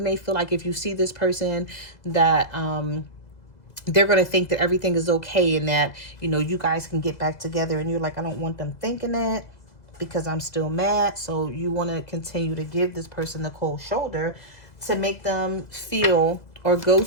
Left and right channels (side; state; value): right; late; 2.0 ms